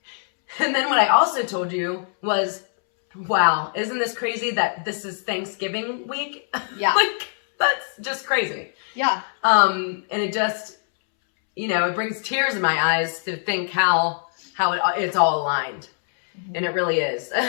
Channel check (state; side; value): silent; right; 64 dB below the other